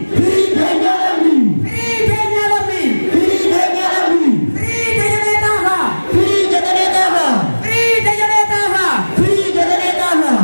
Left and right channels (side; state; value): both; inverted; correlation -1.00